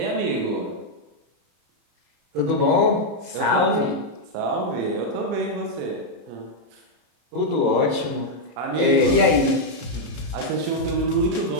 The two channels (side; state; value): left; late; 34 ms